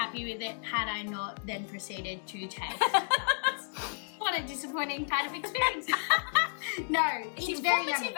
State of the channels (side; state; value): right; silent; 57 dB below the other